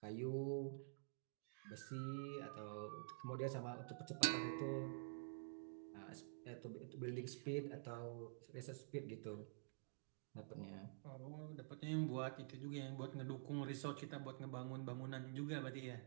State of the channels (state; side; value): silent; left; digital silence